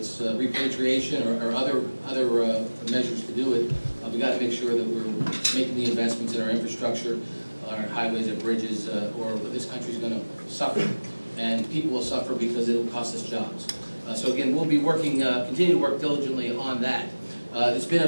repatriation or other measures to do it. We've got to make sure that we're making the investments in our infrastructure, our highways and bridges, or this country's going to suffer. And people will suffer because it will cost us jobs. So again, we'll be working, continue to work diligently on that. It's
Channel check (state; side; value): inverted; both; correlation -1.00